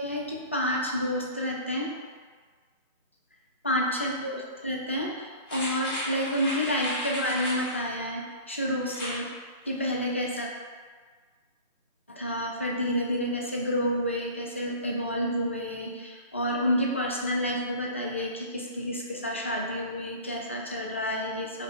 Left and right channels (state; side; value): inverted; both; correlation -0.39